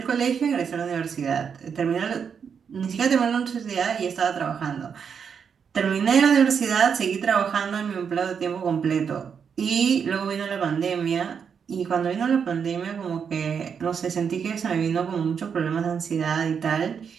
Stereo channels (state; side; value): quieter; left; 6.8 dB